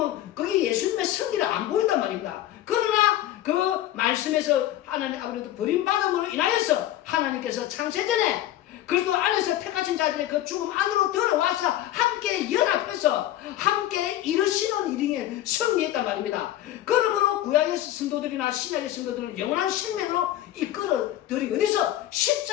거기 예수님의 승리를 안 보인단 말입니다. 그러나 그 말씀에서 하나님 아버지도 버림받음으로 인하여서 하나님께서 창세전에 그리스도 안에서 택하신 자들의 그 죽음 안으로 들어와서 함께 연합해서 함께 이루시는 일에 승리했단 말입니다. 그러므로 구약의 성도들이나 신약의 성도들을 영원한 생명으로 이끌어들이 어디서?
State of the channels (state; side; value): quieter; right; 13.4 dB